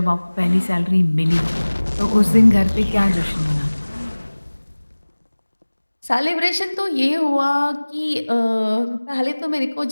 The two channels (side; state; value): both; inverted; correlation -1.00